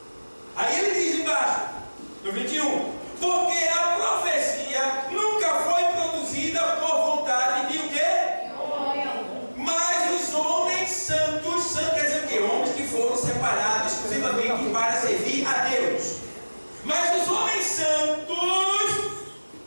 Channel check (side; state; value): both; inverted; correlation -1.00